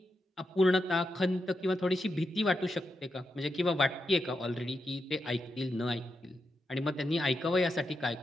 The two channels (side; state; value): both; normal; correlation 0.86